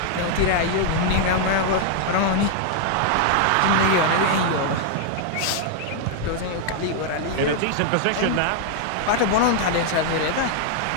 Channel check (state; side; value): different; both; correlation 0.00